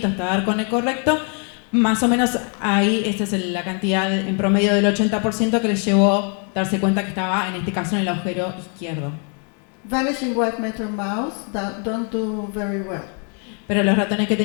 hasta dar con el correcto. Más o menos ahí, esta es la cantidad en promedio del 80% que les llevó darse cuenta que estaba, en este caso, en el agujero izquierdo. Vanishing white matter mouse don't do very well. Pero los ratones que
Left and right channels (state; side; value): quieter; right; 39.6 dB